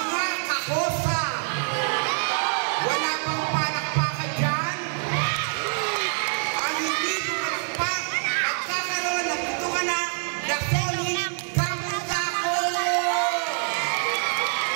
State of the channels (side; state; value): left; silent; 60 dB below the other